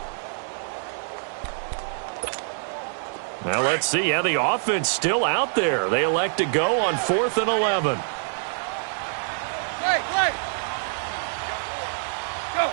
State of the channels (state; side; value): silent; left; digital silence